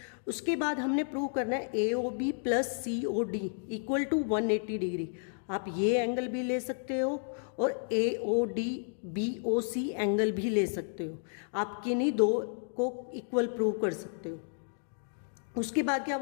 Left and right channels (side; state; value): right; silent; digital silence